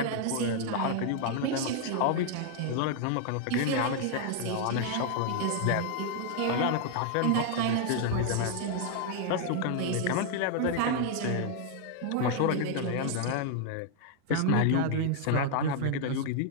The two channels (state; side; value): different; both; correlation 0.00